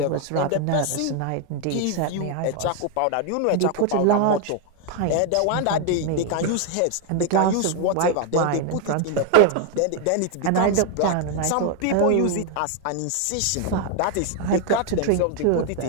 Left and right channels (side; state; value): both; different; correlation 0.01